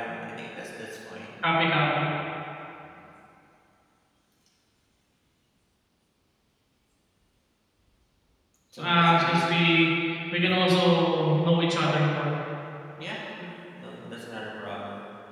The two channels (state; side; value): identical; both; correlation 1.00